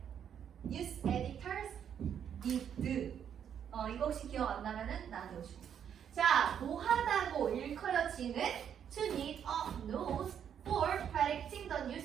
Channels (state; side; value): quieter; left; 8.6 dB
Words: news editors did. 이거 혹시 기억 안 나면은 나한테 오시고. 자, 뭐하다고 일컬어지는 to need a nose for predicting the